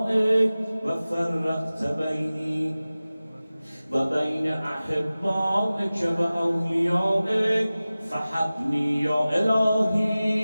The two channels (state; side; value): inverted; both; correlation -0.97